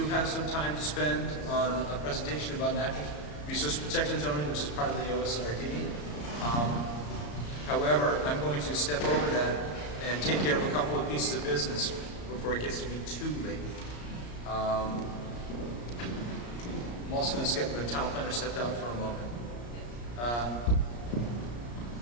have some time to spend on a presentation about natural resource protection zoning, which is part of the OSRD. However, I'm going to step over that and take care of a couple of pieces of business before it gets to be too late. I'm also going to skip the town planner stepped out for a moment.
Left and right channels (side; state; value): right; late; 34 ms